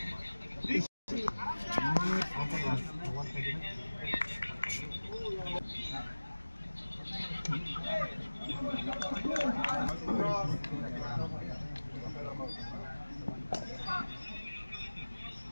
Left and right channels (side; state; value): both; inverted; correlation -1.00